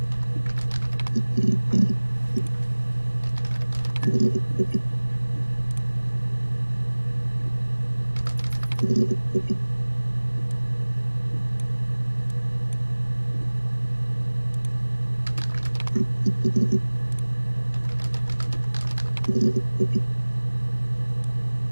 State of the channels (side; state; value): both; inverted; correlation -1.00